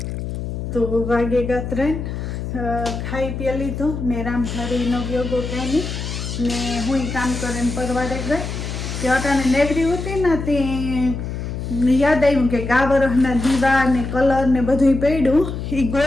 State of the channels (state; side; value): noise; left; hum, 5 dB below the sound